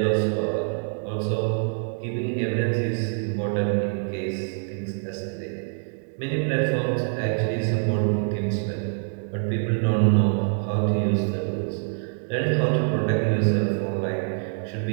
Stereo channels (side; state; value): left; silent; 62 dB below the other